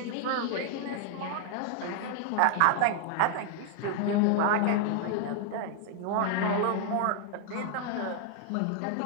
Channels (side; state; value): both; different; correlation 0.00